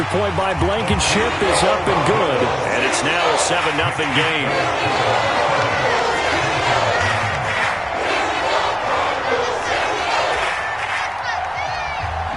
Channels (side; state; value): both; identical; correlation 1.00